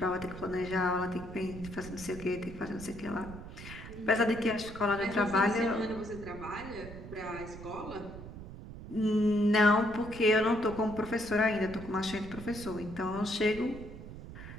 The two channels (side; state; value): right; noise; rumble, 13 dB below the sound